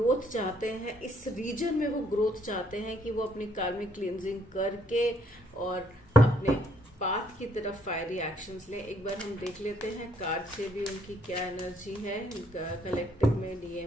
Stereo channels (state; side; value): normal; both; correlation 0.67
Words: चाहते हैं। इस रीजन में वो ग्रोथ चाहते हैं कि वो अपनी कार्मिक क्लींजिंग करके और अपने पाथ की तरफ फायरी एक्शंस लें। एक बार हम देख लेते हैं कार्ड से भी उनकी क्या एनर्जी है कलेक्टिव में